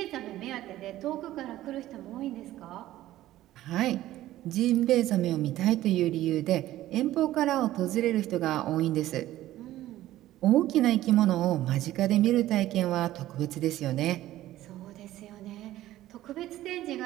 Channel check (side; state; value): left; quieter; 14.6 dB